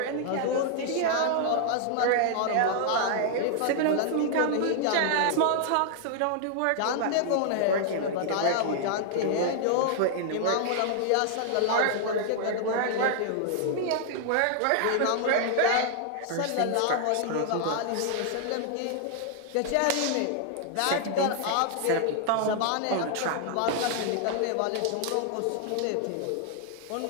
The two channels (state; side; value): different; both; correlation 0.00